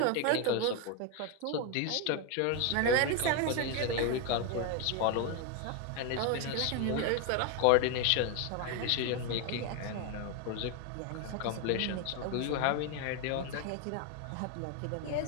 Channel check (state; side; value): different; both; correlation 0.01